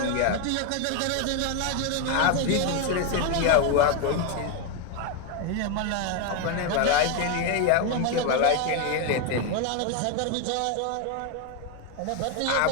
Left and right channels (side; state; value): both; different; correlation 0.01